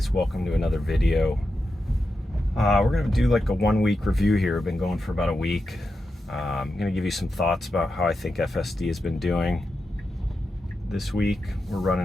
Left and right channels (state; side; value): normal; both; correlation 0.88